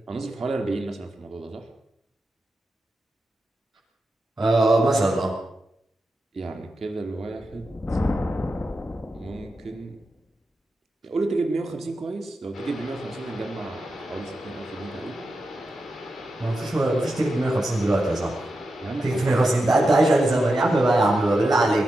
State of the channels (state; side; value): normal; both; correlation 0.89